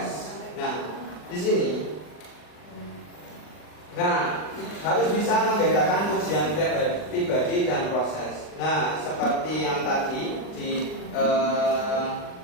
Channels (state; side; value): late; right; 39 ms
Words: Nah, di sini, harus bisa membedakan ujian pribadi dan proses. Nah, seperti yang tadi di